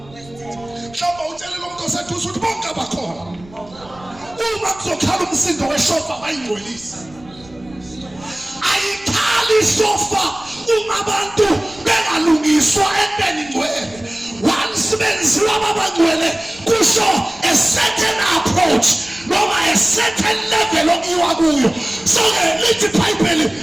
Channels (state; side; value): noise; right; rumble, 23 dB below the sound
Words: Mhlawumbe utshelele umuntu oseduze ukuthi bonke abakhona. Uma kuzokhala umsindo weshofa abayigcwelisi. Ayikhali isofa uma abantu bengalungiswa entweni ngcwele. Once benziwa abangcwele kusho a certain approach noma a certain level okuyiwa kuyo. So lithi iBhayibheli